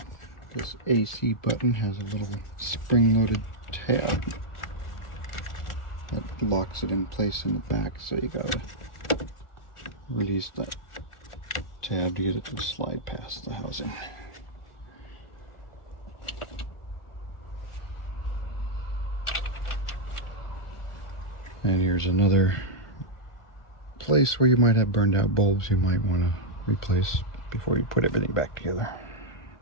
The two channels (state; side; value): late; right; 1.4 ms